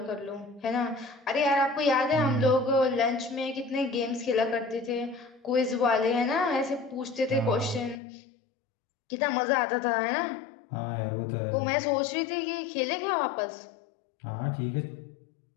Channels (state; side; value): drops out; right; at 8.0 s